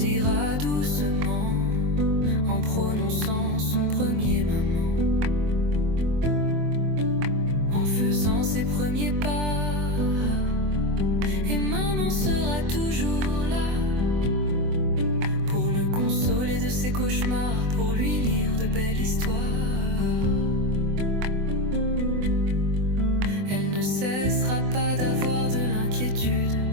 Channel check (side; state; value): left; late; 24 ms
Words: doucement en prononçant son premier maman, en faisant ses premiers pas. Et maman sera toujours là pour le consoler de ses cauchemars, pour lui lire de belles histoires. Elle ne cessera pas d'avoir de l'inquiétude,